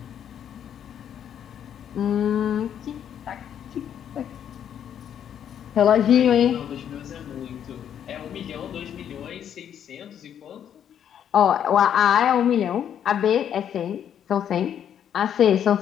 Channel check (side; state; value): right; quieter; 9.3 dB